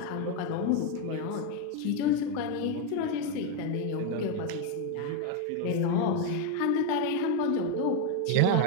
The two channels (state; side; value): different; both; correlation 0.02